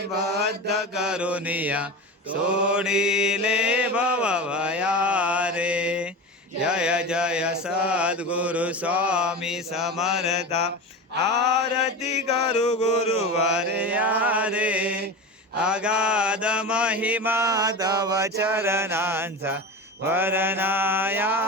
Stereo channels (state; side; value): normal; both; correlation 0.27